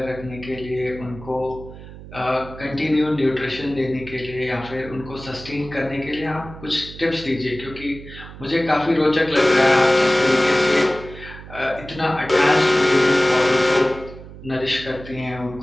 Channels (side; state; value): right; noise; hum, 15 dB below the sound